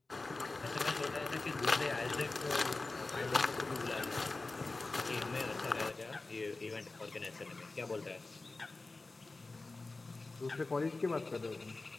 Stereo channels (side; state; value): right; quieter; 3.4 dB